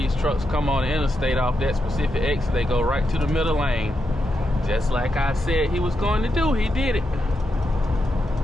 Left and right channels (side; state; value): both; normal; correlation 0.85